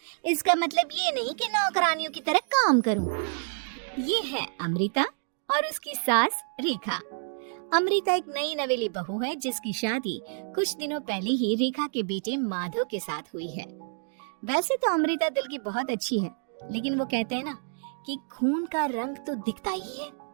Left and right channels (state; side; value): silent; left; digital silence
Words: इसका मतलब ये नहीं कि नौकरानियों की तरह काम करूँ। ये है अमृता और उसकी सास रेखा। अमृता एक नई नवेली बहू है जिसकी शादी कुछ दिनों पहले ही रेखा के बेटे माधव के साथ हुई है। वैसे तो अमृता दिल की बहुत अच्छी है, लेकिन वो कहते हैं ना कि खून का रंग तो दिखता ही है।